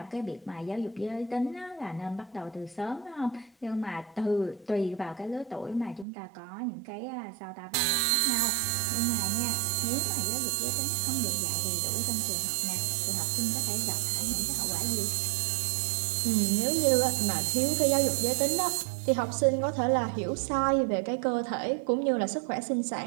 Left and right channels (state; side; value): drops out; left; at 6.1 s